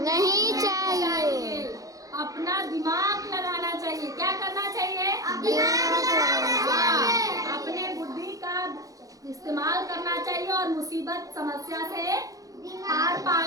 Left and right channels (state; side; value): late; left; 0.17 ms